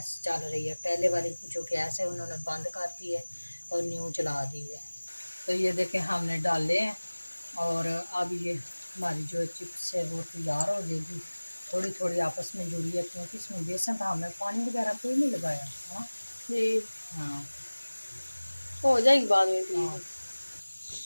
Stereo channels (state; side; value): inverted; both; correlation -1.00